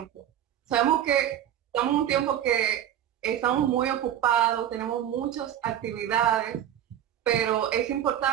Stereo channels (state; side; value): quieter; left; 10.8 dB